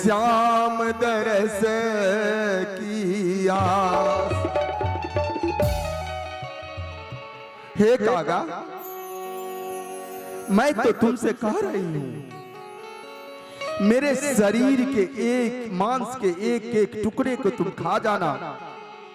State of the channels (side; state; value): both; identical; correlation 1.00